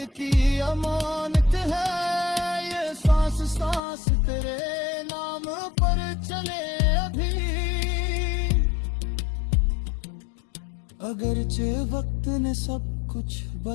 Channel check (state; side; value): drops out; right; at 3.8 s